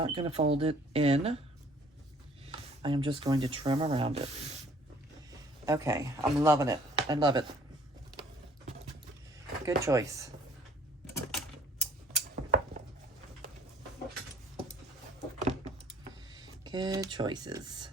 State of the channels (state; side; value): normal; both; correlation 0.57